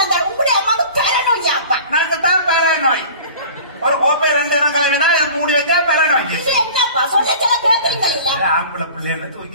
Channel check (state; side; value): inverted; both; correlation -0.41